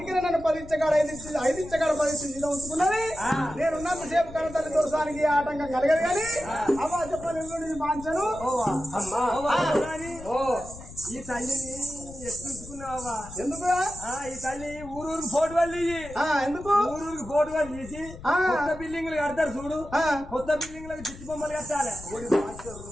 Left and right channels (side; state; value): left; noise; rumble, 15 dB below the sound